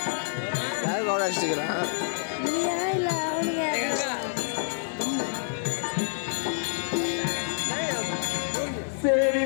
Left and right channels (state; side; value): silent; right; digital silence